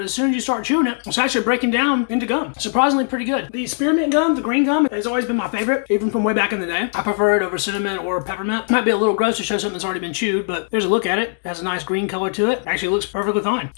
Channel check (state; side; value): silent; right; 66 dB below the other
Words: as soon as you start chewing it, it's actually breaking down into gum. Surprisingly pretty good. The spearmint gum, the green gum, has always been my favorite, even from way back in the day. I prefer it over cinnamon or peppermint. Might be a little gross to show something that's already been chewed, but there's a look at it. It has a nice green color to it. Actually looks perfectly fine.